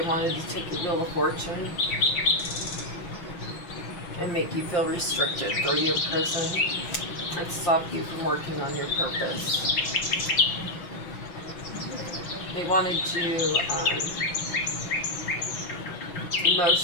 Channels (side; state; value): right; late; 6.3 ms